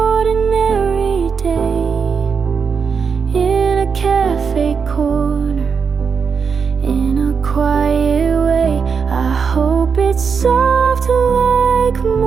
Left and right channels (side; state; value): left; quieter; 5.9 dB